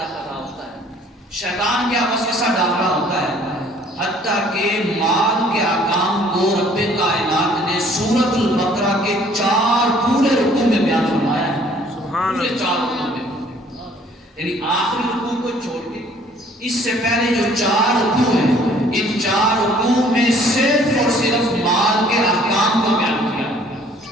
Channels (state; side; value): normal; both; correlation 0.57